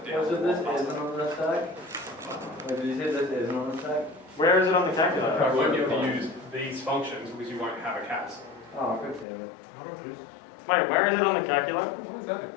down. So this isn't on the stack? Wait, did you say this isn't on the stack? Where is it on the calculator? You won't be able to use these functions because you won't have a CAS. Oh, good damn it. Wait, where is it on the calculator? Why is that in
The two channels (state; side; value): drops out; right; at 9.2 s